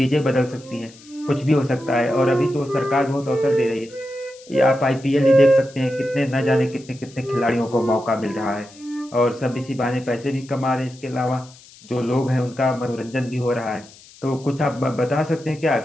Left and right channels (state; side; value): noise; left; hiss, 23 dB below the sound